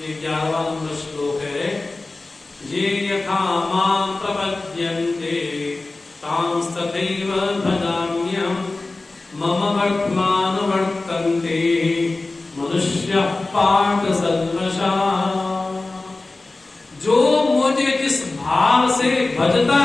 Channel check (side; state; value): right; quieter; 3.3 dB